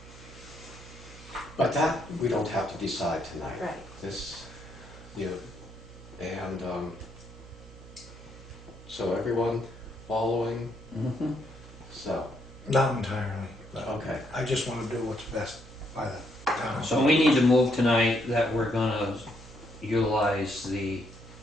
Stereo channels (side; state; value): right; noise; hum, 18 dB below the sound